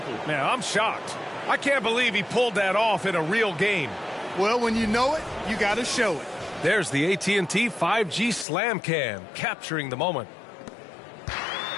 Man, I'm shocked. I can't believe he pulled that off in a real game. Well, when you know it, you got to show it. There's the AT&T 5G Slam Cam, capturing the moment.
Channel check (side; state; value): right; drops out; at 8.5 s